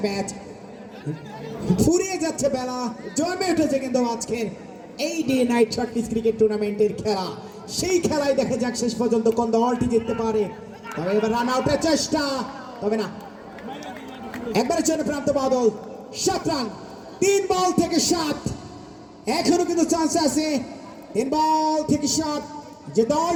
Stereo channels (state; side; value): identical; both; correlation 1.00